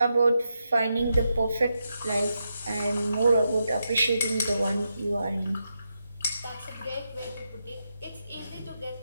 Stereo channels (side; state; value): both; inverted; correlation -0.85